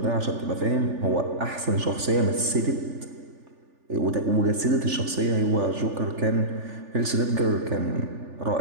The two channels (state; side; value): late; left; 3.4 ms